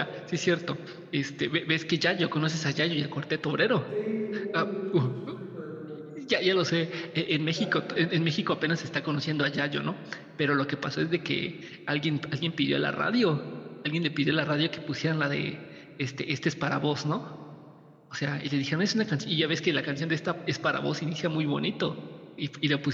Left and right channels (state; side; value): identical; both; correlation 1.00